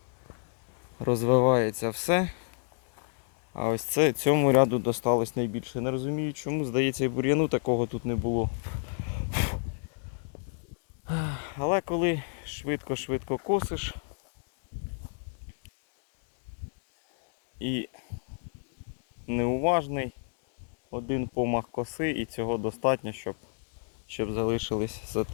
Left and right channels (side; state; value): right; silent; digital silence